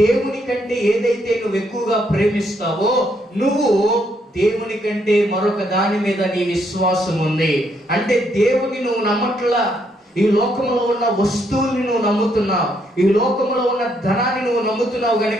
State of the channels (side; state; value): both; normal; correlation 0.74